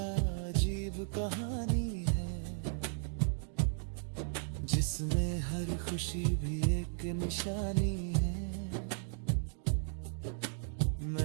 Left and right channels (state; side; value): silent; left; digital silence